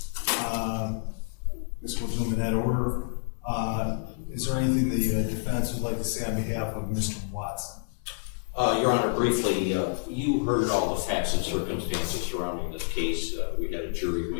This will do them in that order. Is there anything the defense would like to say on behalf of Mr. Watson? Your Honor, briefly, you heard all the facts and circumstances surrounding this case. We had a jury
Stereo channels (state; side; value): silent; right; 59 dB below the other